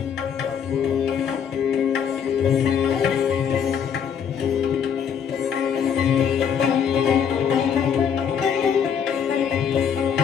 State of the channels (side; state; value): right; quieter; 7.7 dB